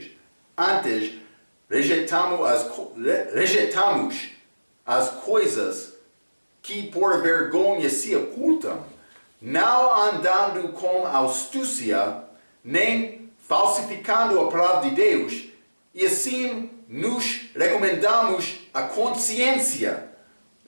Antes, rejeitamos as coisas que por vergonha se ocultam, não andando com astúcia, nem falsificando a palavra de Deus, e assim nos recomendamos a consciência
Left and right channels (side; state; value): both; inverted; correlation -1.00